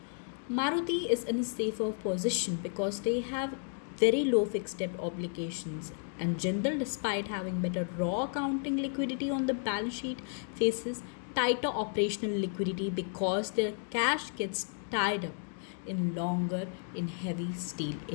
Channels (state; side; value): silent; right; 56 dB below the other